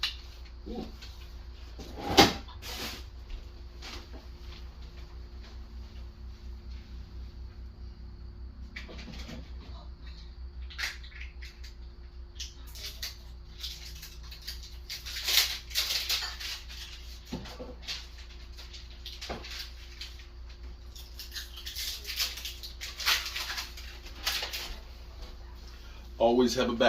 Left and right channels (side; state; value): both; identical; correlation 1.00